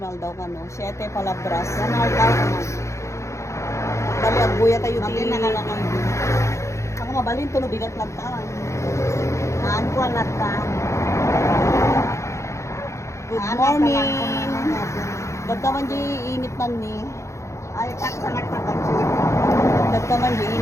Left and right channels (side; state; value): right; late; 0.14 ms